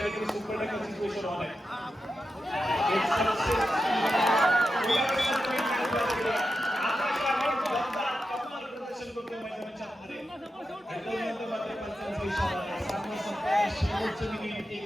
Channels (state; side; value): normal; both; correlation 0.90